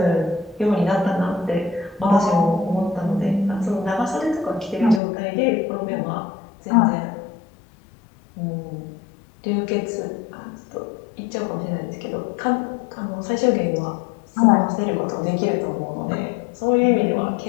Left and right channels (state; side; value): drops out; right; at 5.0 s